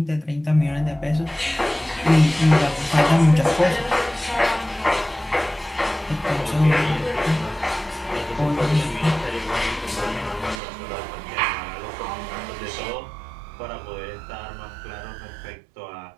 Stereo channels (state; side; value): drops out; left; at 10.6 s